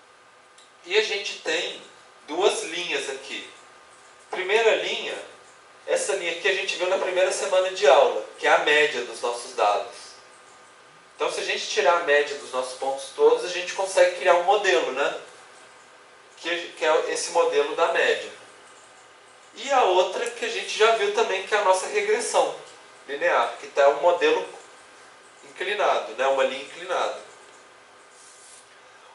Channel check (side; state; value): both; identical; correlation 1.00